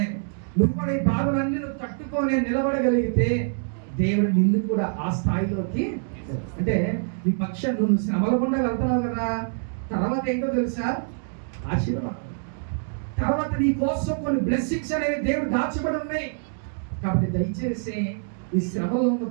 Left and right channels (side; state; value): left; silent; digital silence